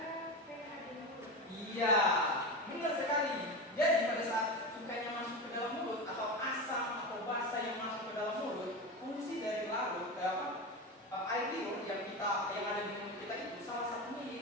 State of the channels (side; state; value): both; normal; correlation 0.22